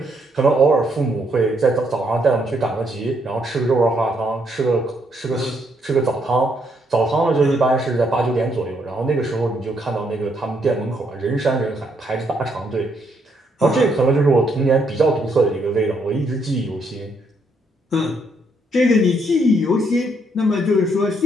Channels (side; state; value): both; normal; correlation 0.73